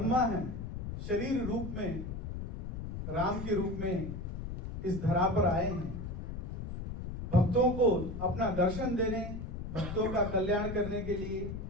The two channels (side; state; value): left; noise; rumble, 7 dB below the sound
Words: हैं, शरीर रूप में राम के रूप में इस धरा पर आए हैं, भक्तों को अपना दर्शन देने, भक्तों का कल्याण करने के लिए,